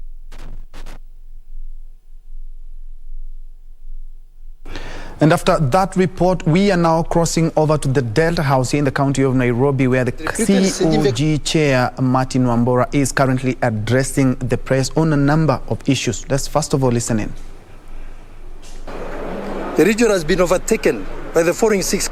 And after that report, we are now crossing over to the Delta House here in the county of Nairobi, where the COG chair, Martin Wambora, is currently addressing the press on a number of issues. Let's first of all listen in. The region has been overtaken by the following 6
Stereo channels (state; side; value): identical; both; correlation 1.00